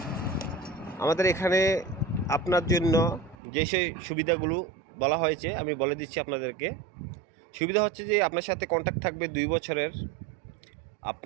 আমাদের এখানে আপনার জন্য যে সেই সুবিধাগুলো বলা হয়েছে আমি বলে দিচ্ছি আপনাদেরকে। সুবিধা হচ্ছে যে আপনার সাথে কন্ট্যাক্ট থাকবে 2 বছরের।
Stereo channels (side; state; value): left; drops out; at 3.4 s